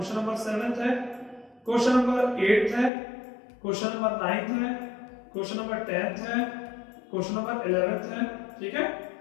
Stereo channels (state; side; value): drops out; right; at 2.9 s